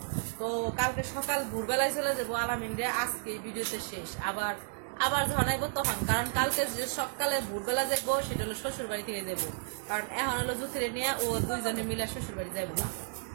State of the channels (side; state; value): left; silent; digital silence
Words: তো কালকে সকাল ভোরবেলায় চলে যাবো আলামিন রে। আজকে ভিডিওতে শেষ, আবার আবার যখন আইবো তখন, কারণ কালকে যে সকালে ভোরবেলা যাবো সেটা হলো শ্বশুর বাড়ি থেকে যাবো। কারণ এখন হলো জুথিরে নিয়ে ও দুইজনে মিলে শ্বশুর বাড়ি যাইবো না,